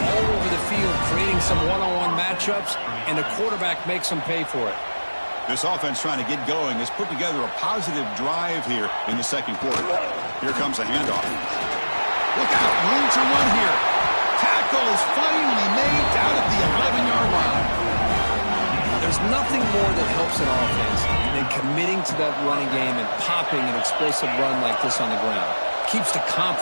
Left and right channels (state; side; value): inverted; both; correlation -1.00